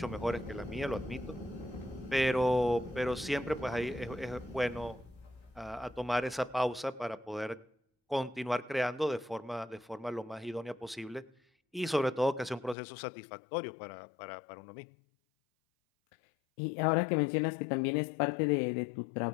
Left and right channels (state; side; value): drops out; right; at 12.8 s